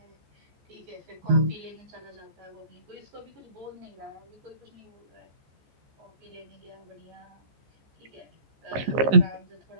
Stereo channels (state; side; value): late; left; 15 ms